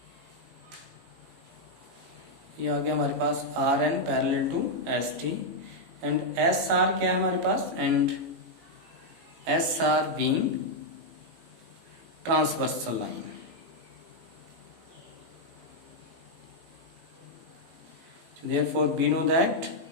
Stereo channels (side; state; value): left; late; 18 ms